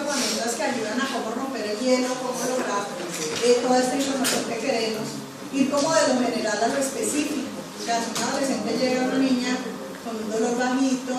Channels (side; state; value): both; identical; correlation 1.00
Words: herramientas que ayudan a cómo romper el hielo, cómo lograr toda esta información que queremos, ir como de lo general a lo específico. O sea, si un adolescente llega a una niña con un dolor bajito,